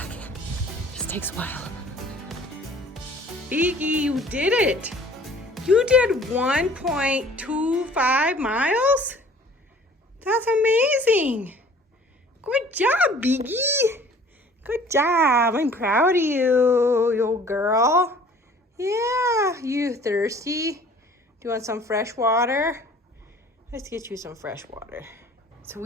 Just takes a while. Biggie, you did it. You did 1.25 miles? That's amazing. Good job, Biggie. Good job. I'm proud of you girl. Yeah, you thirsty? Do you want some fresh water? Let's get you some fresh water. So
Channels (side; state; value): both; normal; correlation 0.51